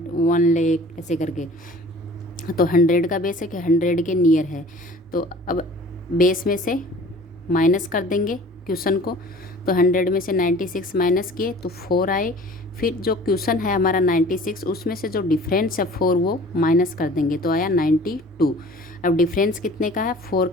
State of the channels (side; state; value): both; normal; correlation 0.46